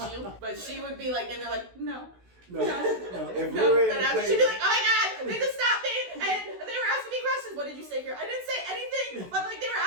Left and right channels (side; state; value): left; late; 16 ms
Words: you. But she would be like, and they're like, no. No. If we No, were in then the after place, she'd be like, oh my god, they just stopped me and they were asking me questions. What did you say here? I didn't say anything, but like they were